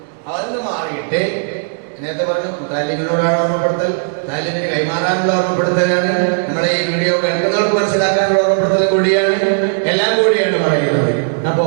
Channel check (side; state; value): left; silent; digital silence